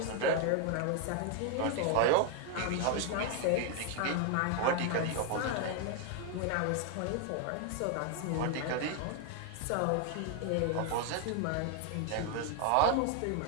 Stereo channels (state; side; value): different; both; correlation 0.01